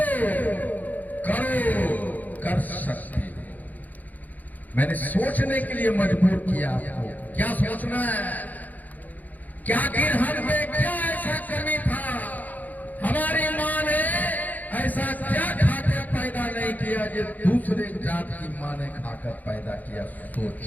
करो कर सकते हो। मैंने सोचने के लिए मजबूर किया आपको। क्या सोचना है? क्या आखिर हम में क्या ऐसा कमी था? हमारी माँ ने ऐसा क्या खाकर पैदा नहीं किया जो दूसरे जात की माँ ने खाकर पैदा किया?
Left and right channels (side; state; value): right; late; 0.081 ms